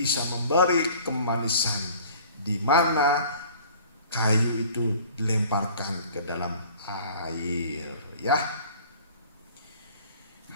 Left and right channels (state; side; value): inverted; both; correlation -0.49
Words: memberi kemanisan, di mana kayu itu dilemparkan ke dalam air. Ya,